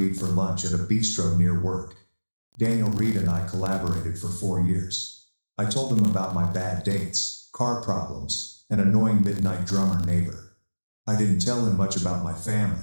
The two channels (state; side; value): inverted; both; correlation -1.00